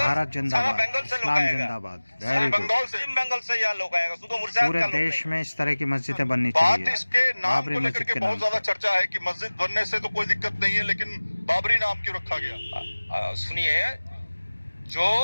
भारत जिंदाबाद, बंगाल से लोग इस्लाम आएगा, जिंदाबाद, वेरी गुड। बंगाल से यहाँ लोग आएगा, सुधो मुर्शिदाबाद पूरे का लोग देश में इस तरह की मस्जिदें बननी बात चाहिए। इसके नाम बाबरी को लेकर मस्जिद के के बहुत नाम ज्यादा से। चर्चा है कि मस्जिद बनने से तो कोई दिक्कत नहीं है, लेकिन बाबरी नाम क्यों रखा गया? सुनिए, जो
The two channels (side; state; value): both; inverted; correlation -1.00